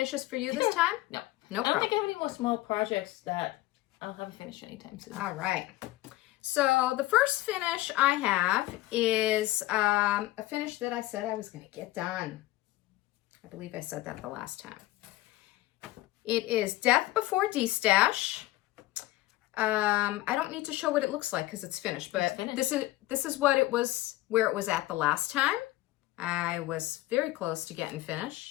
for you this time? No. No problem. I don't think I have any more small projects that I'll have a finish anytime soon. All right. So the first finish I have is a finish that I said I was going to get done. I believe I said that the last time. It is Death Before D-Stash. I don't need to show what it looks like because it's finished, but this is what it was, where it was at the last time. I was very close to getting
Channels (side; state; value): right; quieter; 17.6 dB